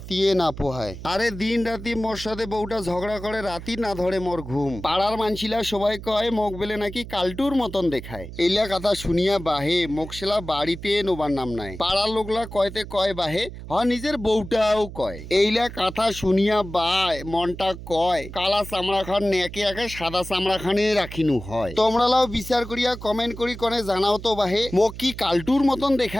না পোহায়। আরে দিন রাতি মোর সাথে বউটা ঝগড়া করে, রাতি না ধরে মোর ঘুম। পাড়ার মানছিলা সবাই কয় মোক বেলে নাকি কালটুর মতন দেখায়। এইলা কথা শুনিয়া বাহে মোকসেলা বাড়িতে নোবার নাম নাই। পাড়ার লোকলা কয়তে কয় বাহে, নিজের বউটাও কয়। এইলা কথা শুনিয়া বায় মনটা কয় কালা চামড়া খান নেকে একে সাদা চামড়া খানে রাখিনু হয়। তোমরালাও বিচার করিয়া কমেন্ট করি কনে জানাও তো বাহে মোক কি কালটুর মতন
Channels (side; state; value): right; noise; hum, 12 dB below the sound